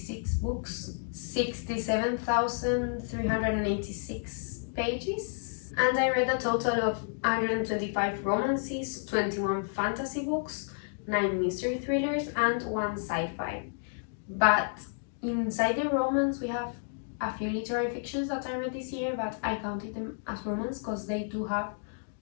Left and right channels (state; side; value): silent; right; digital silence